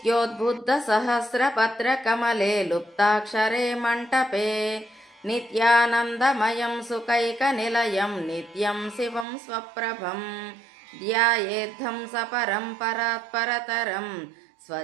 लुप्ताक्षरे मण्टपे नित्यानन्दमयं सुखैकनिलयं नित्यं शिवं स्वप्रभं ध्यायेद्धं सपरं परात्परतरं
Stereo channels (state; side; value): drops out; left; at 9.2 s